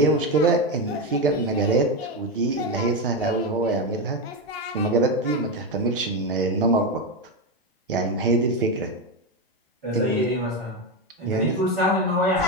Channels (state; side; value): normal; both; correlation 0.12